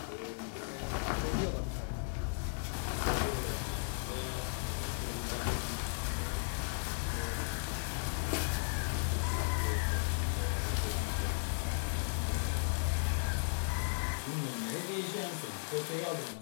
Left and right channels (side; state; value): right; silent; 54 dB below the other